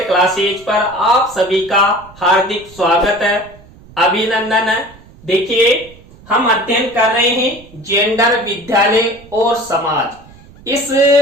क्लासेज पर आप सभी का हार्दिक स्वागत है, अभिनंदन है। देखिए, हम अध्ययन कर रहे हैं जेंडर, विद्यालय और समाज। इस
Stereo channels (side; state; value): right; noise; rumble, 23 dB below the sound